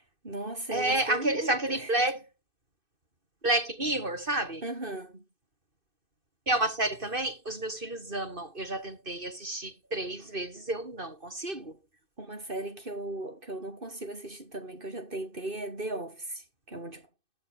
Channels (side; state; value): left; late; 2.6 ms